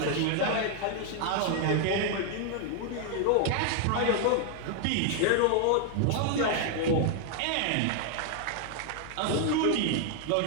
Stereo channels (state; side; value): different; both; correlation 0.00